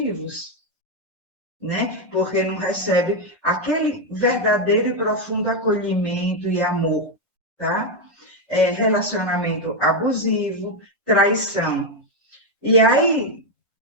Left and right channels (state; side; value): normal; both; correlation 0.04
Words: né? Porque não recebe aquele verdadeiro e profundo acolhimento e amor, tá? Relacionamento abusivo, traição. E aí,